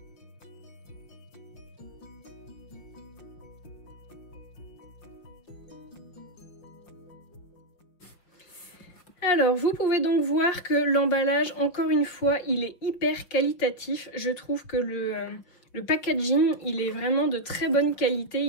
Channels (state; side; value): late; right; 5.9 ms